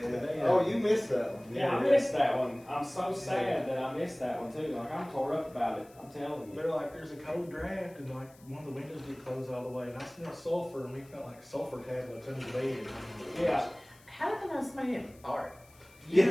Oh, you missed that one. Yeah, I missed that one. I'm so sad that I missed that one too. I'm tore up about it. I'm telling you. They're like, there's a cold draft, and one of the windows did close all the way, and I smelled sulfur, and we felt like sulfur tablets under the bed. Yeah. How did the know somebody didn't fart? You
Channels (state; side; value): noise; left; hiss, 27 dB below the sound